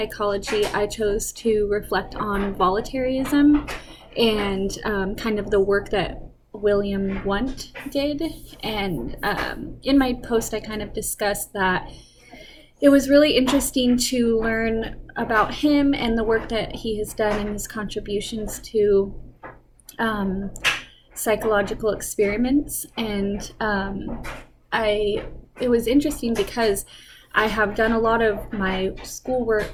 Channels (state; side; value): identical; both; correlation 1.00